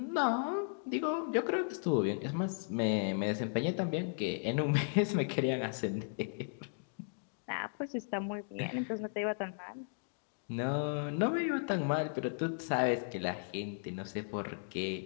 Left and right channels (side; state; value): right; silent; digital silence